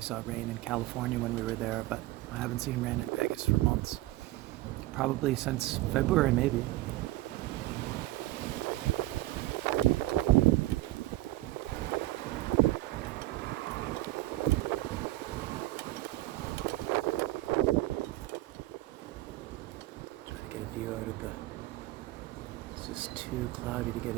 saw rain in California when we were there, but I haven't seen rain in Vegas for months. Probably since February, maybe. Try to get a view out of the... It's just too cloudy to get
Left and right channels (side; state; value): left; quieter; 17.6 dB